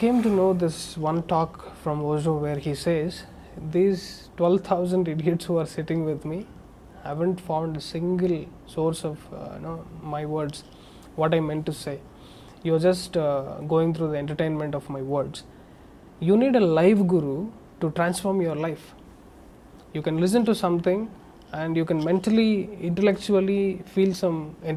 to know this one talk from Osho where he says, these 12,000 idiots who are sitting with me haven't found a single source of my words, what I meant to say. You're just going through the entertainment of my words. You need a live guru to transform your life. You can listen to something and you can mentally, intellectually feel some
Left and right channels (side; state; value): both; identical; correlation 1.00